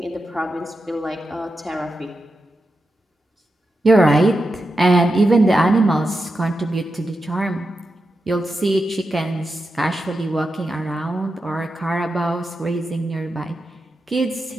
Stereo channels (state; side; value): normal; both; correlation 0.89